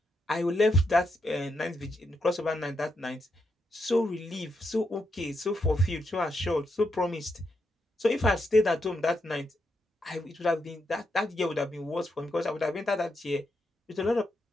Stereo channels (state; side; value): normal; both; correlation 0.82